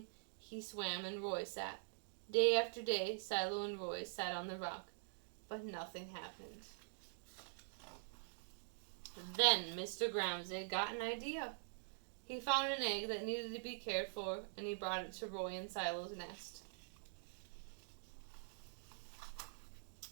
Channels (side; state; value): left; silent; digital silence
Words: he swam and Roy sat. Day after day, Silo and Roy sat on the rock, but nothing happened. Then Mr. Gramsay got an idea. He found an egg that needed to be cared for, and he brought it to Roy and Silo's nest.